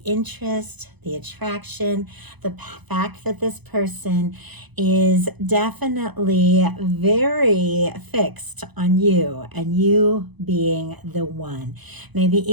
interest, the attraction, the fact that this person is definitely very fixed on you and you being the one. Maybe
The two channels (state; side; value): late; left; 0.99 ms